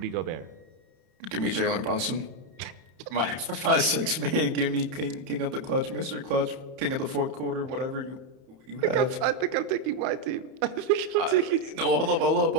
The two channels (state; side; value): late; left; 31 ms